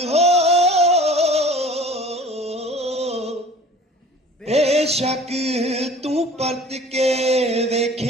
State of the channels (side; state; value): both; normal; correlation 0.45